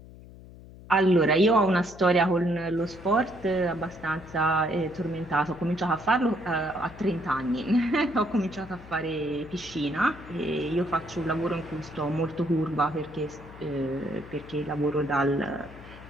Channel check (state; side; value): noise; left; hum, 18 dB below the sound